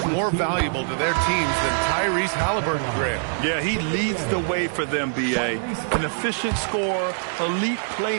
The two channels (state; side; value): silent; left; digital silence